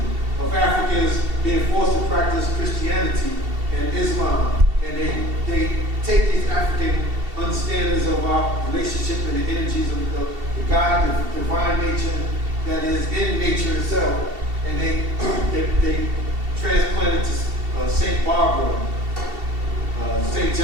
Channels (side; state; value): left; late; 2.7 ms